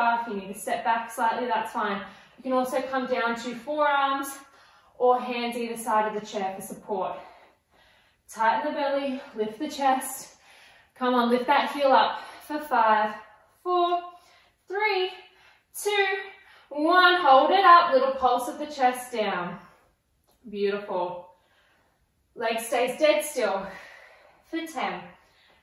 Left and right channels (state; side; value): identical; both; correlation 1.00